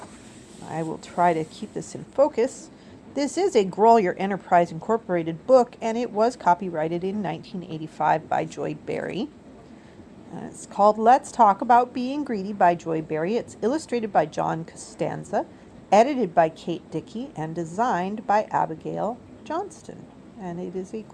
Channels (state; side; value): identical; both; correlation 1.00